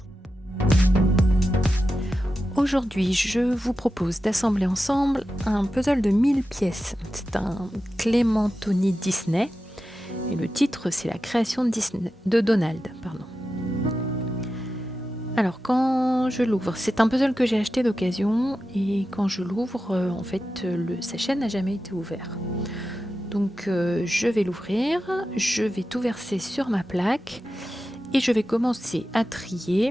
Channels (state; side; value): normal; both; correlation 0.91